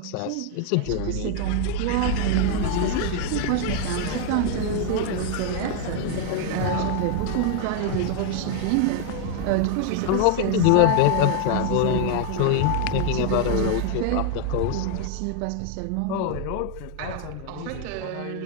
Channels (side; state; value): both; different; correlation 0.00